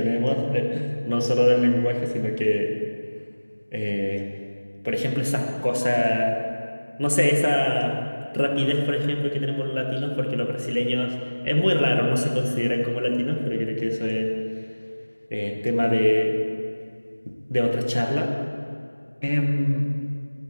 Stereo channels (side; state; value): both; inverted; correlation -1.00